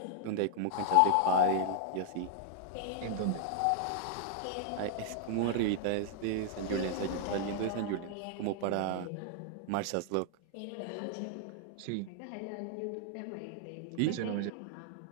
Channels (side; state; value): both; different; correlation -0.01